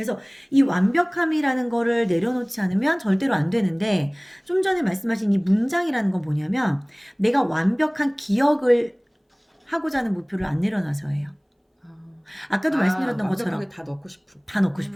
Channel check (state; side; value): identical; both; correlation 1.00